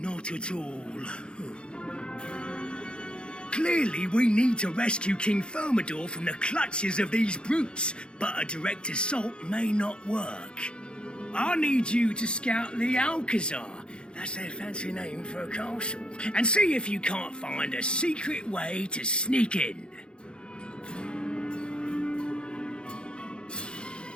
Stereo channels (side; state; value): right; late; 0.053 ms